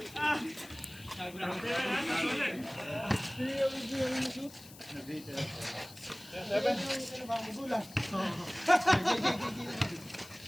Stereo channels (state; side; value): noise; left; hiss, 19 dB below the sound